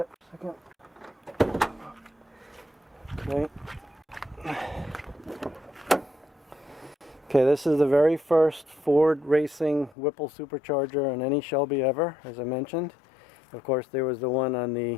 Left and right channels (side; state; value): right; drops out; at 10.0 s